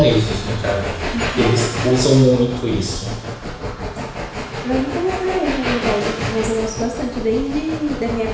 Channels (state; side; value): identical; both; correlation 1.00